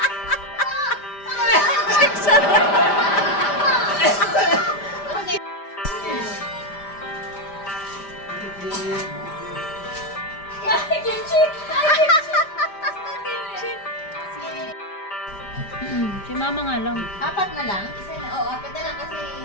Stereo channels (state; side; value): late; right; 5.0 ms